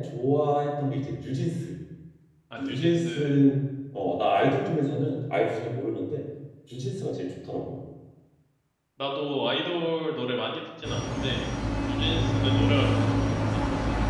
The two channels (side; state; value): both; identical; correlation 1.00